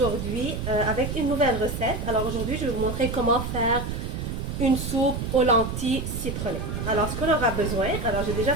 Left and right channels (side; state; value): right; noise; rumble, 4 dB below the sound